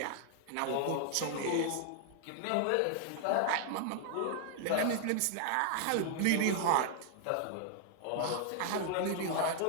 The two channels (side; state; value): both; different; correlation 0.00